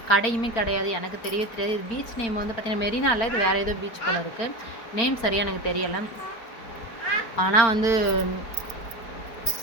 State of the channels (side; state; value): right; late; 4.4 ms